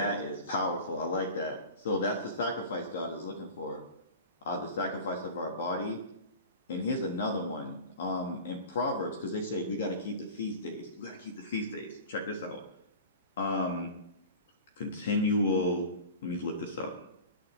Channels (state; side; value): inverted; both; correlation -0.35